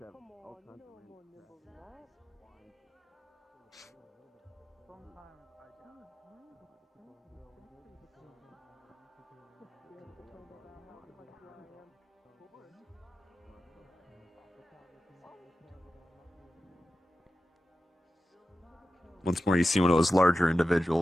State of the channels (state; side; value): normal; both; correlation 0.93